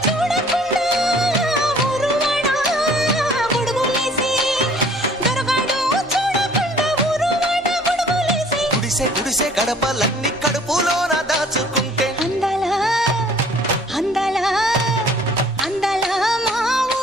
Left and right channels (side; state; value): both; normal; correlation 0.55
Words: చూడకుండా ఊరువాడ గొడుగులేసి దొరగాడు చూడకుండా ఊరువాడ గొడుగులేసి గుడిసె గుడిసె గడపలన్నీ కడుపులోన దాచుకుంటే అందాల అందాల అందాల మా